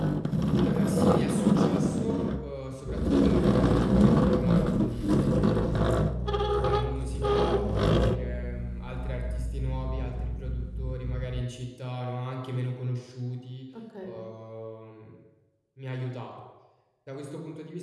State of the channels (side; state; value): both; identical; correlation 1.00